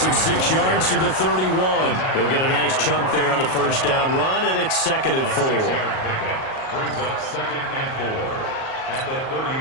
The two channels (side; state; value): right; late; 38 ms